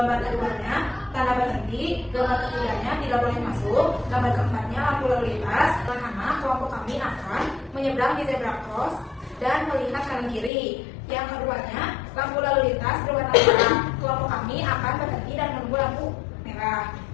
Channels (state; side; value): drops out; right; at 10.5 s